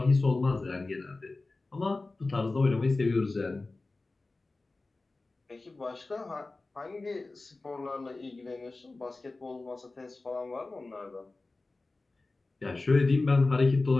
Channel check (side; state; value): right; quieter; 3.3 dB